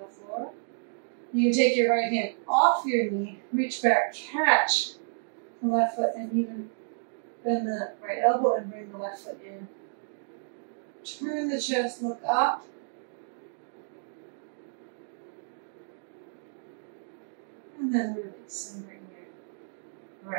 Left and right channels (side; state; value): left; silent; digital silence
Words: floor. You can take your right hand off your knee, reach back, catch the left foot, and even bend the right elbow and bring the left foot in. Turn the chest, look up, And then release and bring your